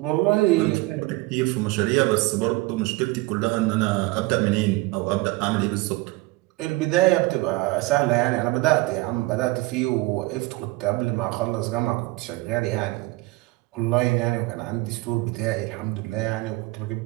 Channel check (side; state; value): left; quieter; 21.7 dB